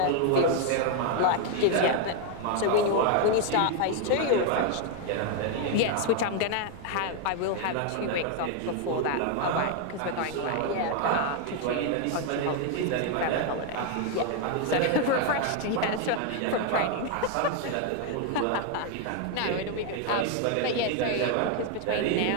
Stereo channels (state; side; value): different; both; correlation 0.01